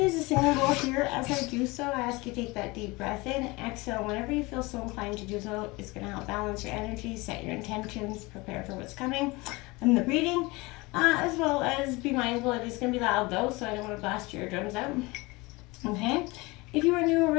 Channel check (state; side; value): quieter; right; 23.6 dB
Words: to use a singing bowl here. As I do so, I ask you to take that deep breath in, exhale. Whenever you feel so inclined to do so, it's going to help balance your energy, set your intentions, prepare for what's coming in the reading, as well as be mindful it is going to be loud though, so I don't want to blast your eardrums out. Okay, if you are new or